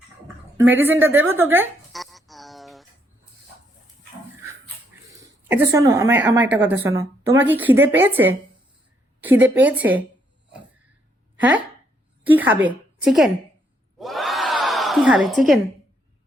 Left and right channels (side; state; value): both; normal; correlation 0.73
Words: মেডিসিনটা দেবো তোকে? আচ্ছা শোনো, আমার একটা কথা শোনো, তোমার কি খিদে পেয়েছে? খিদে পেয়েছে? হ্যাঁ, কি খাবে? চিকেন? কি খাবে? চিকেন?